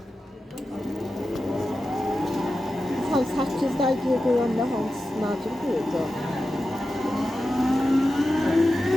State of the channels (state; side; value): normal; both; correlation 0.92